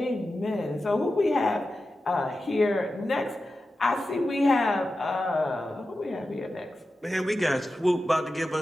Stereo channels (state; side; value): normal; both; correlation 0.92